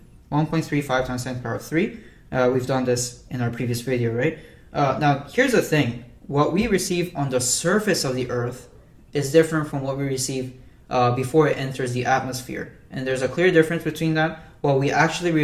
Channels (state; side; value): identical; both; correlation 1.00